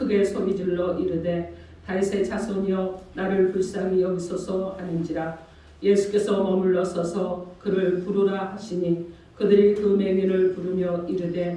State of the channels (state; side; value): identical; both; correlation 1.00